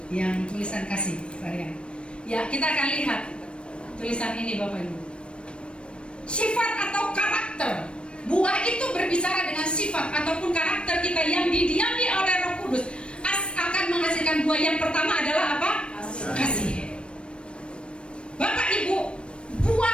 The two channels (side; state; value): right; late; 0.058 ms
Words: yang tulisan kasih varian. Ya, kita akan lihat tulisan ini Bapak Ibu. Sifat atau karakter. Buah itu berbicara dengan sifat ataupun karakter kita yang didiami oleh Roh Kudus akan menghasilkan buah. Yang pertama adalah apa? Kasih. Bapak Ibu,